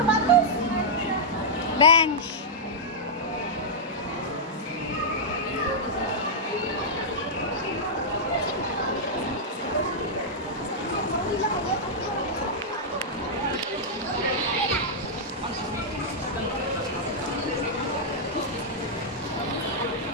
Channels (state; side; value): normal; both; correlation -0.08